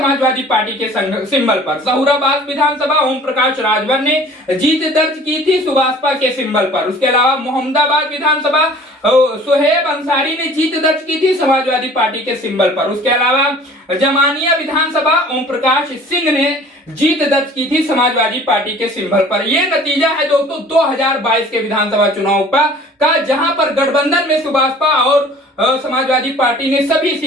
पार्टी के सिंबल पर। सहुराबाद विधानसभा ओम प्रकाश राजभर ने जीत दर्ज की थी सुभाषपा के सिंबल पर। उसके अलावा मोहम्मदाबाद विधानसभा सुहेब अंसारी ने जीत दर्ज की थी समाजवादी पार्टी के सिंबल पर। उसके अलावा जमानिया विधानसभा ओम प्रकाश सिंह ने जीत दर्ज की थी समाजवादी पार्टी के सिंबल पर। यह नतीजा है दोस्तों 2022 के विधानसभा चुनाव का, जहां पर गठबंधन में सुभाषपा और समाजवादी पार्टी ने सभी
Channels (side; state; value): both; normal; correlation 0.48